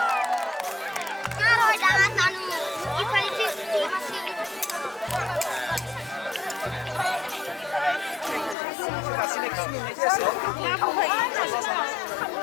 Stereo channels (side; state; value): right; drops out; at 8.6 s